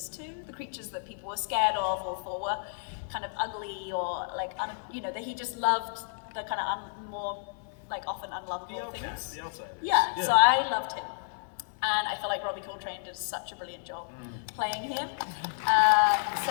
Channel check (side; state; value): right; silent; digital silence